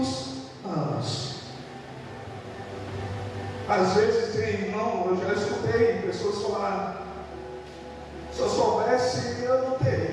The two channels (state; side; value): identical; both; correlation 1.00